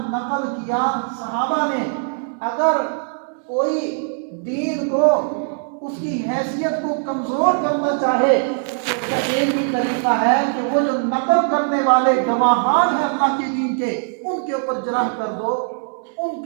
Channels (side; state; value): left; silent; 65 dB below the other